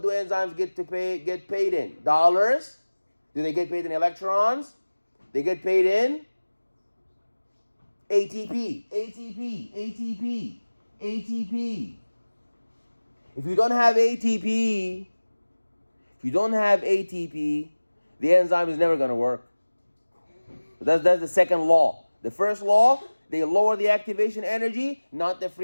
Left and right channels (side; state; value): both; inverted; correlation -1.00